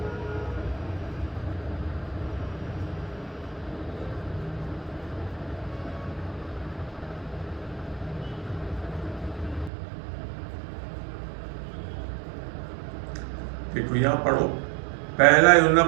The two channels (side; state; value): left; drops out; at 9.7 s